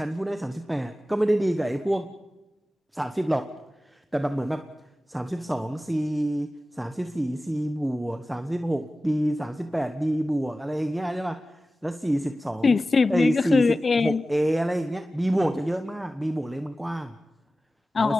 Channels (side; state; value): both; normal; correlation 0.95